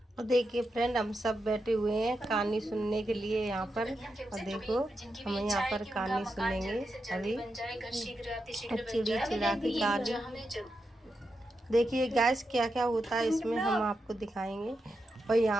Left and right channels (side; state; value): both; normal; correlation 0.87